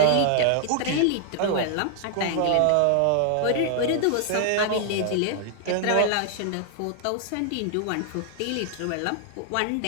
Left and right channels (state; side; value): different; both; correlation 0.00